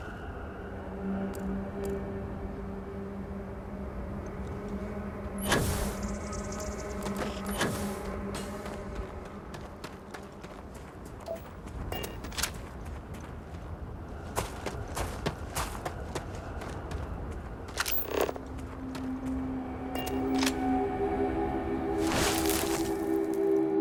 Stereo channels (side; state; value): both; identical; correlation 1.00